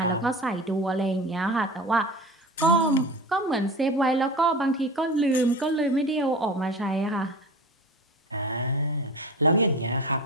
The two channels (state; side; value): normal; both; correlation 0.32